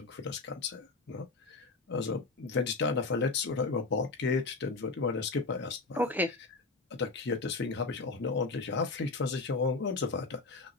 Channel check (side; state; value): right; quieter; 3.7 dB